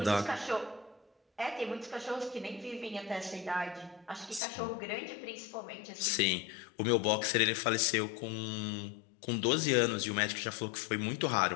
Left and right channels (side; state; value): right; drops out; at 4.4 s